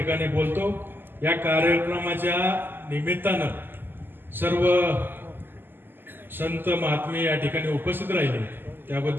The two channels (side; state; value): left; late; 0.095 ms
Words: बोलतो. या कार्यक्रमाच्या निमित्तानं सर्व संत महात्मे या ठिकाणी उपस्थित राहिले,